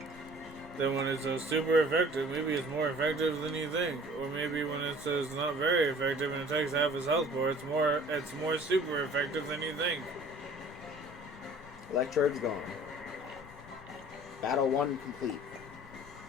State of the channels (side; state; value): both; normal; correlation 0.49